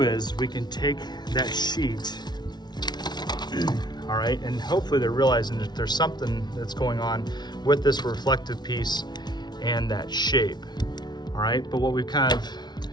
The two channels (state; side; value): late; right; 0.20 ms